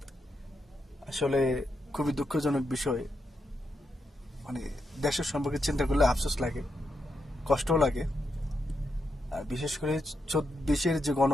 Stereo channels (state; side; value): normal; both; correlation 0.84